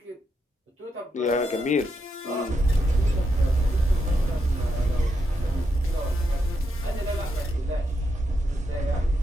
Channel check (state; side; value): normal; both; correlation 0.82